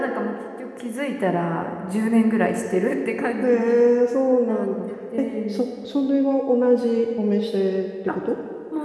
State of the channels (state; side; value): identical; both; correlation 1.00